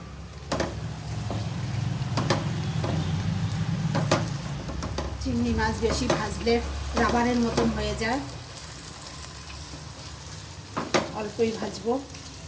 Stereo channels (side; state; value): both; identical; correlation 1.00